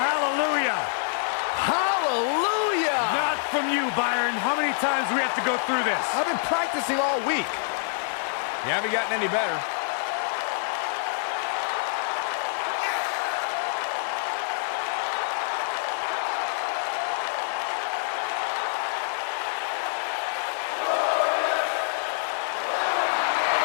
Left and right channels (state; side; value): silent; right; digital silence